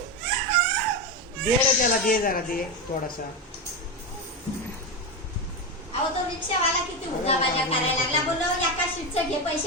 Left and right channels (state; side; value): normal; both; correlation 0.14